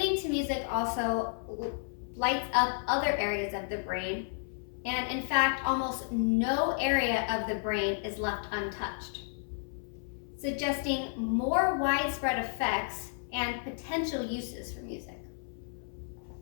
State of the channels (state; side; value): silent; right; 56 dB below the other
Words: to music also lights up other areas of the brain, and in fact, almost no area of the brain is left untouched, suggesting more widespread effects and potential uses for music.